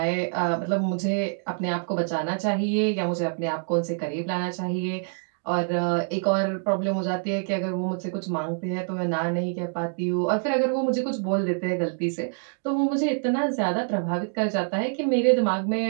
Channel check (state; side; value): silent; left; digital silence